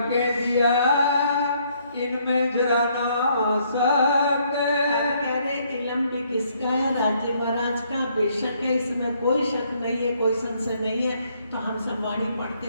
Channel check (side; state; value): both; inverted; correlation -0.68